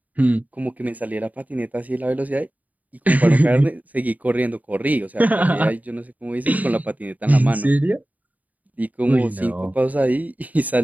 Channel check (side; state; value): left; late; 0.075 ms